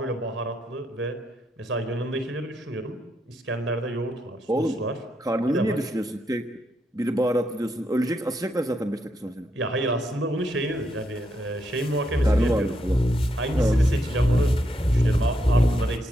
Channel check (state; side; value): normal; both; correlation 0.80